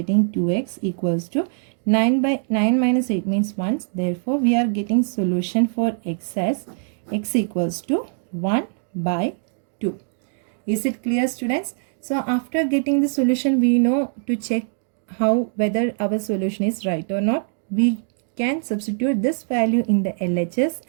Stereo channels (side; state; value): left; silent; 64 dB below the other